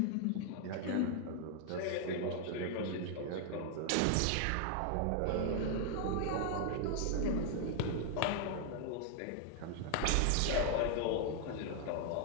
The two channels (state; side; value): different; both; correlation 0.00